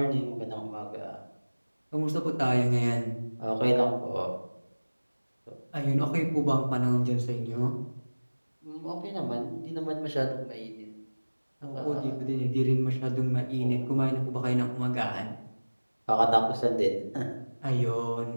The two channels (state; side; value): inverted; both; correlation -1.00